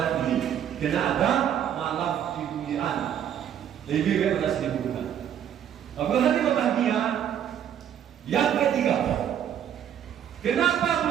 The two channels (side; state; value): left; quieter; 9.6 dB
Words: ini, karena ada malam kemuliaan lebih daripada 1000 bulan. Bagaimana berbahagia? Yang ketiga, kenapa